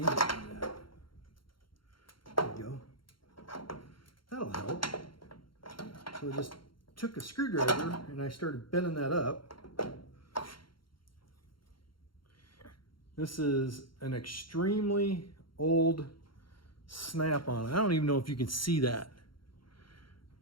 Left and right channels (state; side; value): late; right; 0.73 ms